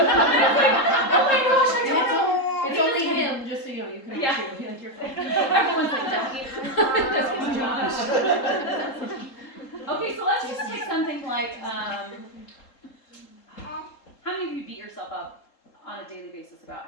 gosh, I don't know. It's only him, just so you know, you can Yeah. chew. Like you're fine. Everyone's like that. Okay, so let's just take something like, how many of you beat yourself up on a daily basis about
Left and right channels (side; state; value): right; late; 3.8 ms